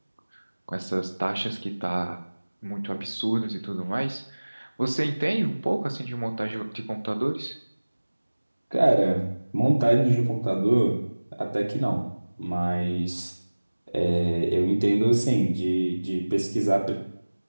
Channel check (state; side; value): inverted; both; correlation -1.00